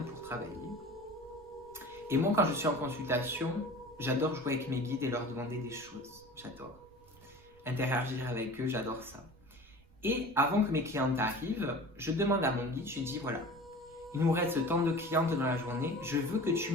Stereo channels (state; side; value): noise; right; rumble, 27 dB below the sound